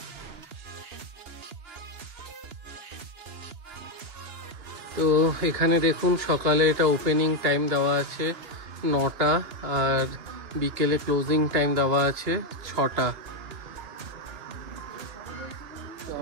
তো এখানে দেখুন সকালে এটা ওপেনিং টাইম দেওয়া আছে 9টা, আর বিকেলে ক্লোজিং টাইম দেওয়া আছে 6টা। তো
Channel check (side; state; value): left; late; 2.9 ms